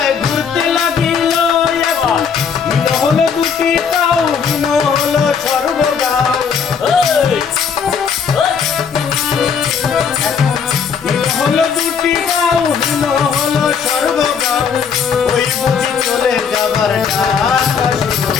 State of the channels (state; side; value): quieter; right; 6.6 dB